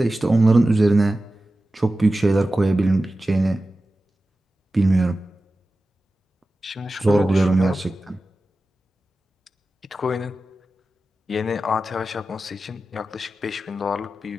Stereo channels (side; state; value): both; normal; correlation 0.94